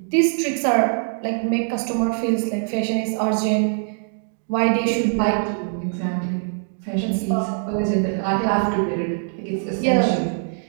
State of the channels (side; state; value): left; silent; 64 dB below the other